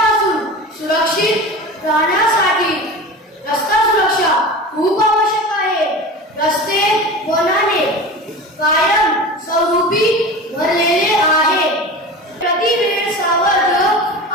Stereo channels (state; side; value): normal; both; correlation 0.32